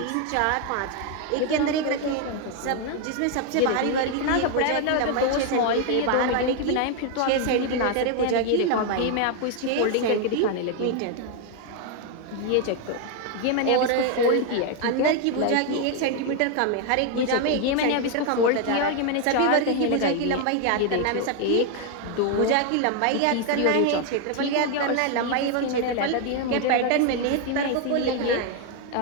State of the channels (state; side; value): different; both; correlation 0.01